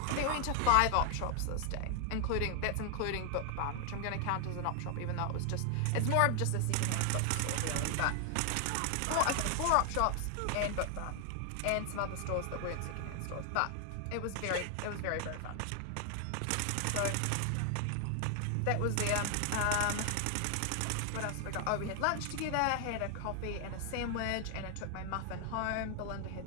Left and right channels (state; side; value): different; both; correlation 0.00